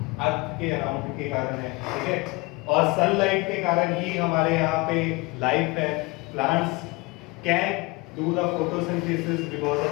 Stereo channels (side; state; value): right; quieter; 24.8 dB